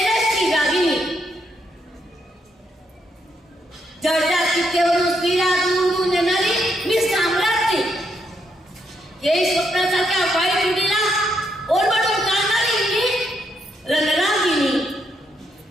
रागिनी. जळत्या चित्तेवरून स्त्रीला दूरून येणारी मी साम्राज्ञी. हे स्वप्नासारख्या वाईट रूढीला ओरडून काढणारी मी रणरागिनी.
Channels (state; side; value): normal; both; correlation 0.77